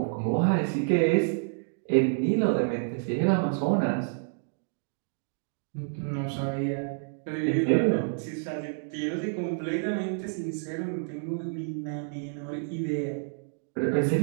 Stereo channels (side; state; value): left; silent; digital silence